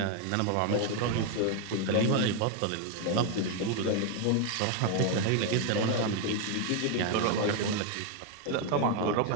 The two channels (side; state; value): both; different; correlation 0.01